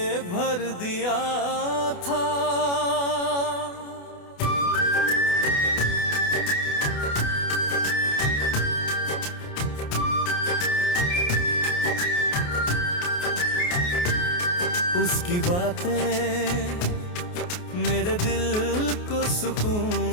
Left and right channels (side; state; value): right; late; 28 ms